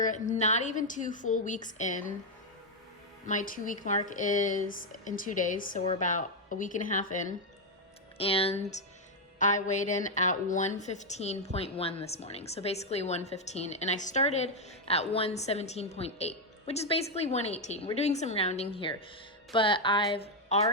not even 2 full weeks in. My 2-week mark is in 2 days, so we're about a week and a half in. And I weighed in at 115.1 this morning, so basically 115. And I started at 117.8, which is basically 118. We're doing some rounding here, but I've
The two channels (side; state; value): both; normal; correlation 0.02